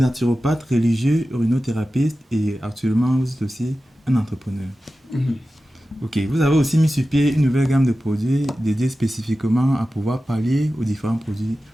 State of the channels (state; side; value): normal; both; correlation 0.94